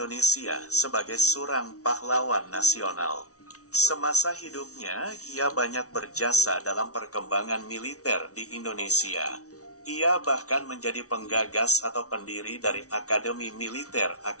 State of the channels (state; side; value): late; right; 0.66 ms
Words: sebagai seorang pahlawan nasional. Semasa hidupnya, ia banyak berjasa dalam perkembangan militer di Indonesia. Ia bahkan menjadi penggagas atau pendiri dari Akademi Militer